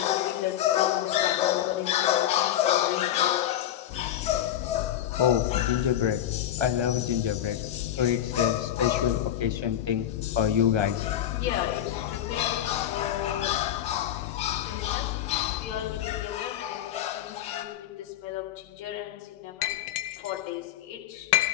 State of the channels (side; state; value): right; quieter; 11.4 dB